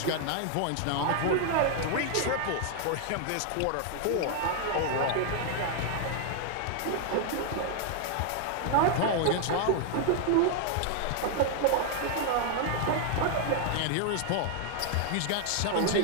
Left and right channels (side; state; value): both; different; correlation 0.00